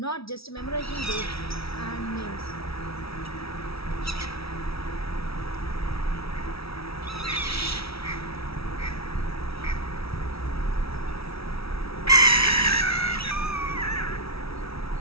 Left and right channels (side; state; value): right; late; 0.76 ms